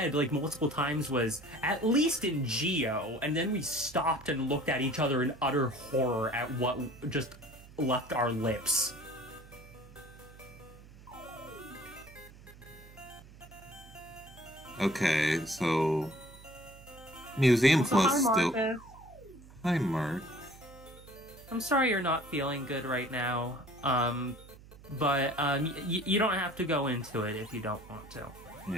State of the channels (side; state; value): right; noise; hum, 20 dB below the sound